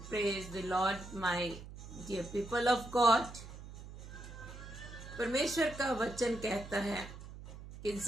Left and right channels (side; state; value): right; noise; hum, 13 dB below the sound